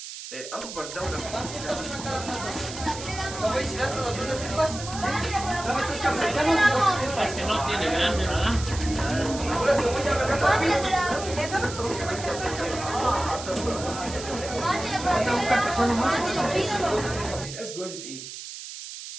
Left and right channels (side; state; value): right; noise; hiss, 11 dB below the sound